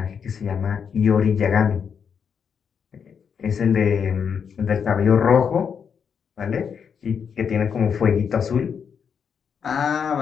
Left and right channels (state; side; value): quieter; right; 6.9 dB